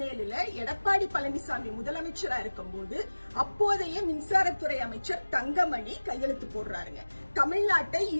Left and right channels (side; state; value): both; inverted; correlation -1.00